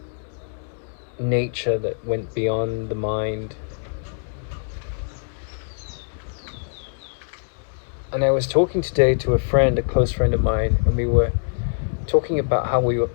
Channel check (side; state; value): right; silent; digital silence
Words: nature that went beyond the mind. And I was talking today to a friend, a close friend of mine, and we were talking about how we were